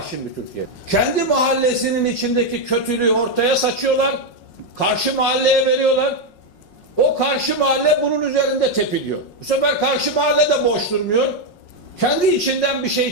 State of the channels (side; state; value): right; late; 5.5 ms